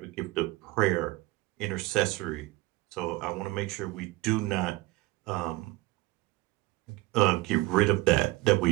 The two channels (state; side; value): quieter; left; 19.9 dB